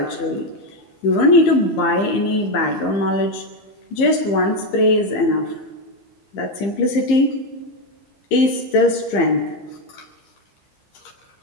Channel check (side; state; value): right; late; 15 ms